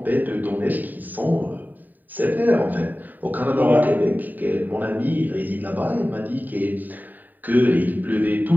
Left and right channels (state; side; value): late; left; 0.087 ms